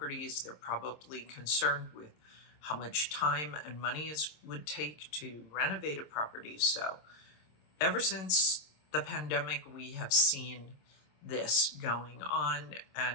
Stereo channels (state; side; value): late; right; 26 ms